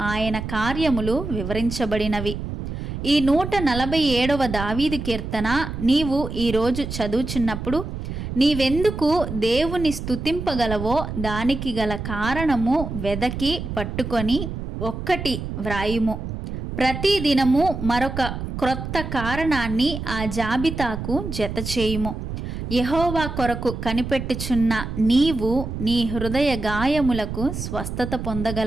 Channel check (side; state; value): right; noise; rumble, 6 dB below the sound